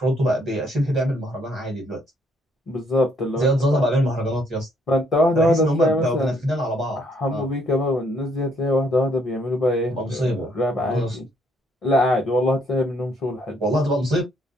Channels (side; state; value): both; normal; correlation 0.69